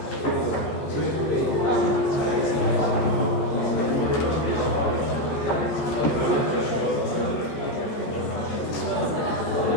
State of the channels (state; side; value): late; right; 14 ms